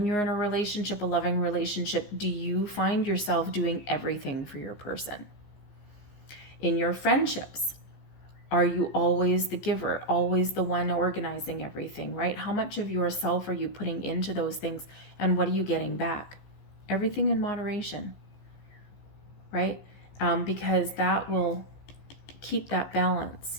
you're in a relationship, a loving relationship, do you find yourself doing everything for your person? In your friendships, are you always the giver, always the one organizing everything, right? How much of yourself are you putting into those things and what are you getting back? Everything in moderation, right? Because that will keep that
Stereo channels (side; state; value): right; late; 15 ms